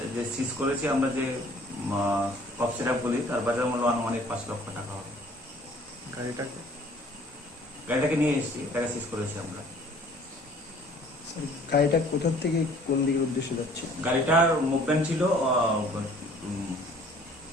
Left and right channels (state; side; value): normal; both; correlation 0.54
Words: যে সিজ করেছি আমরা, যে কফ সিরাপগুলি, তার বাজার মূল্য আনুমানিক 5 লক্ষ টাকা হবে। গাড়িটাকে নিয়ে এসেছি, এটাকে সিজ করেছি আমরা। গাড়িটা কোথা থেকে কোন দিকের উদ্দেশ্যে যাচ্ছে? গাড়িটার মুভমেন্ট ছিল